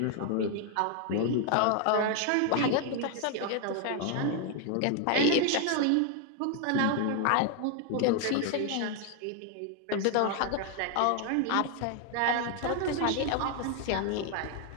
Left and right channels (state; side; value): different; both; correlation 0.00